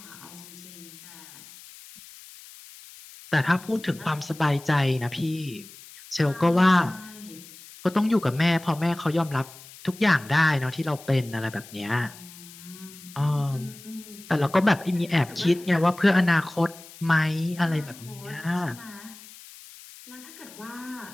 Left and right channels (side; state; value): left; noise; hiss, 19 dB below the sound